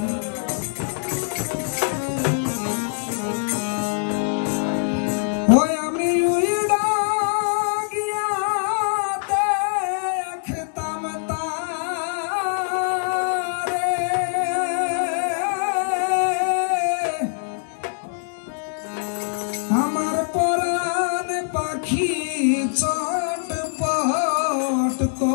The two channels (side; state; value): right; silent; digital silence